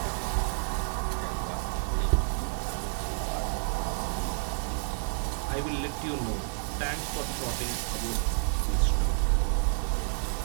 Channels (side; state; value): left; silent; 58 dB below the other